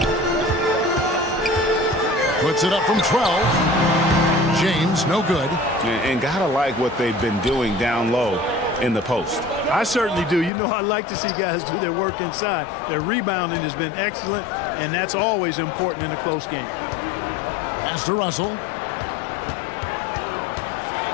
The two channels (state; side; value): drops out; right; at 10.5 s